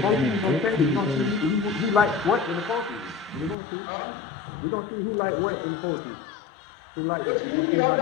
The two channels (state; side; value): drops out; right; at 3.6 s